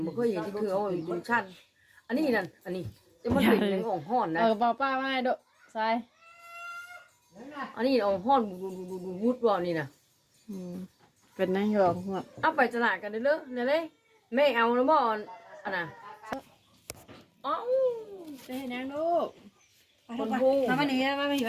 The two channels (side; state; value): both; identical; correlation 1.00